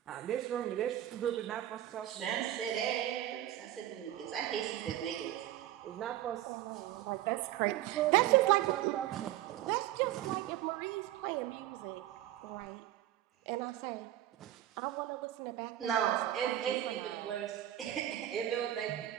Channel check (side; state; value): left; quieter; 13.3 dB